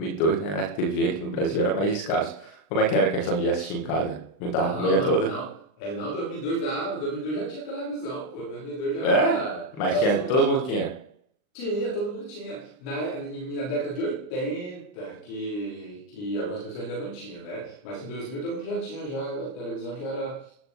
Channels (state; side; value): late; right; 39 ms